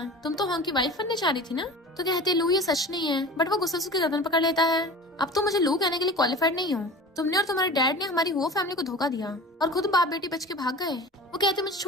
तुम तो होंग की वाइफ बनने जा रही थी ना। तो कहते लू ये सच नहीं है, बट वो गुस्से से उसकी गर्दन पकड़ लेता है। अब तो मुझे लू कहने के लिए क्वालिफाइड नहीं हो, तुमने और तुम्हारे डैड ने हमारी हुआ फैमिली को धोखा दिया और खुद बाप बेटी बच के भाग गए। वो कहते मुझे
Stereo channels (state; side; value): normal; both; correlation 0.37